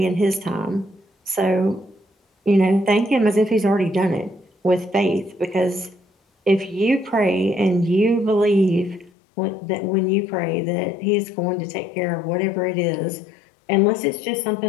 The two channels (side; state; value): right; drops out; at 9.1 s